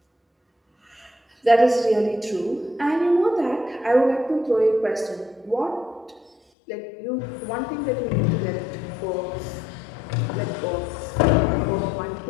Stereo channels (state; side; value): drops out; right; at 6.4 s